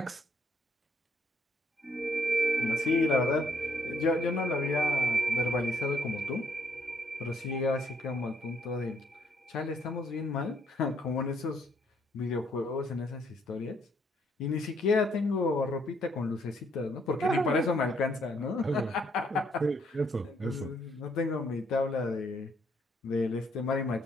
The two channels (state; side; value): normal; both; correlation 0.69